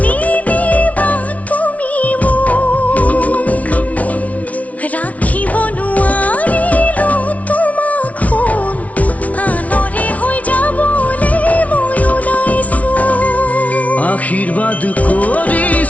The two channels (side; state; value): right; late; 0.068 ms